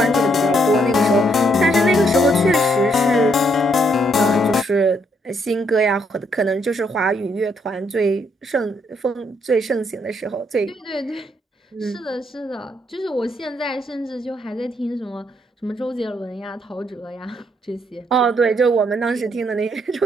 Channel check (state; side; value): normal; both; correlation 0.73